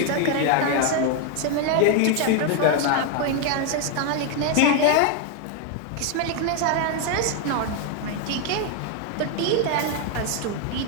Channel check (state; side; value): different; both; correlation 0.01